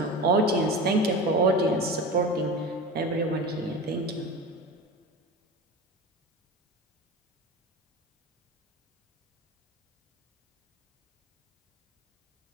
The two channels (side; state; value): both; normal; correlation 0.30